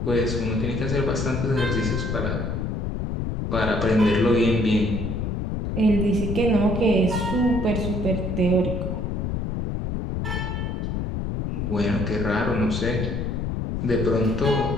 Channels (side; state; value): left; noise; rumble, 2 dB below the sound